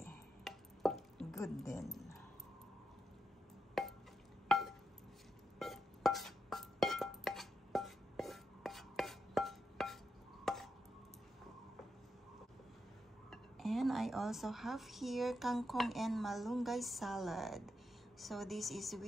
Good then. And I also have here kangkong and malunggay salad. So this is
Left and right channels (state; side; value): normal; both; correlation 0.85